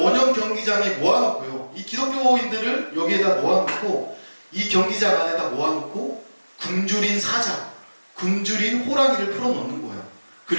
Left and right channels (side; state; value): both; inverted; correlation -1.00